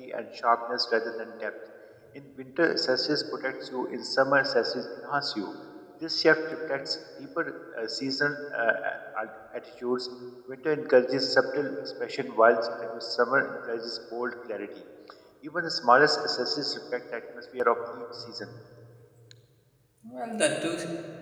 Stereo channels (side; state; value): both; identical; correlation 1.00